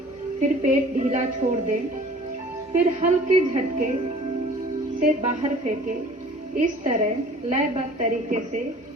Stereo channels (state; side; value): normal; both; correlation 0.49